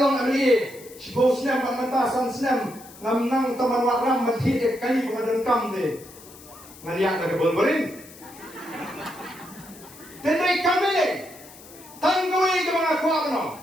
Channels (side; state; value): left; noise; hiss, 20 dB below the sound